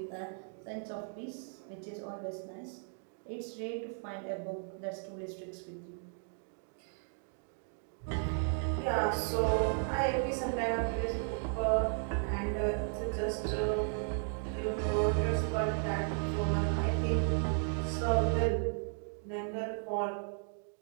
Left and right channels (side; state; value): left; silent; 54 dB below the other